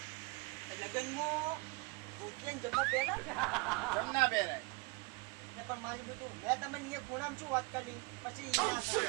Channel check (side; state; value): left; quieter; 26.6 dB